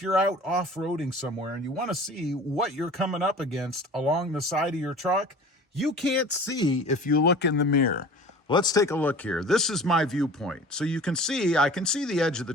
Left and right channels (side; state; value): both; normal; correlation 0.42